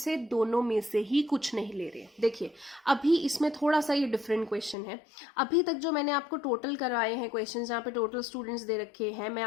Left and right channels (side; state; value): right; drops out; at 4.8 s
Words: दोनों में से ही कुछ नहीं ले रहे। देखिए अभी इसमें थोड़ा सा ये डिफरेंट क्वेश्चन है। अभी तक जो मैंने आपको टोटल करवाए हैं क्वेश्चन जहाँ पे टोटल स्टूडेंट्स दे रखे हैं, मैं